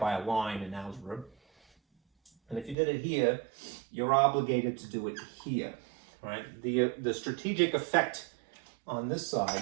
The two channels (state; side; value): drops out; left; at 2.8 s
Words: a line in algebra. And if you did it here, you're obligated to do it here, right? The strategic effect on this